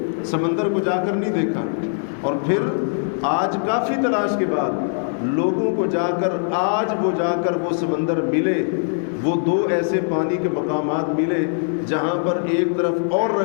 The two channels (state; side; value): silent; right; 64 dB below the other